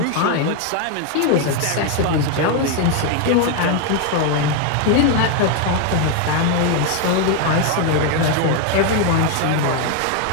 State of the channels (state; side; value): different; both; correlation 0.01